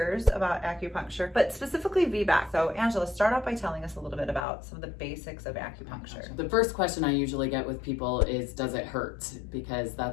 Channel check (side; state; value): right; drops out; at 4.5 s